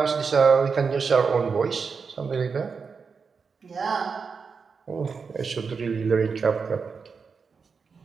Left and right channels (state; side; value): quieter; left; 5.4 dB